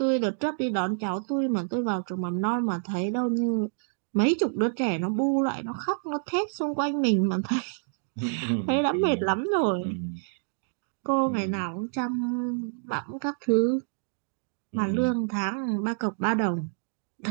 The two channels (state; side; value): silent; left; digital silence